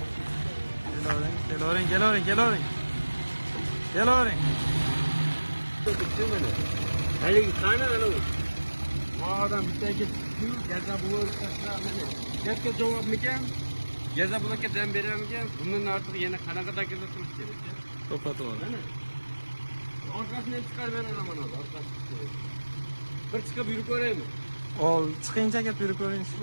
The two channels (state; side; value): inverted; both; correlation -1.00